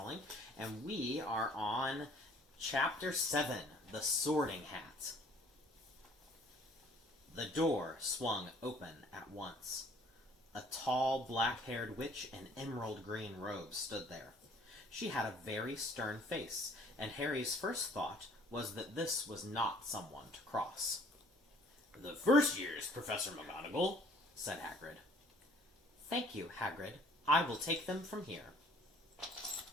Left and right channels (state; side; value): normal; both; correlation 0.56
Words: and we are on Chapter 7, The Sorting Hat. The door swung open at once. A tall, black-haired witch in emerald green robes stood there. She had a very stern face, and Harry's first thought was that this was not someone to cross. "The first years, Professor McGonagall," said Hagrid. "Thank you, Hagrid. I will take them from here."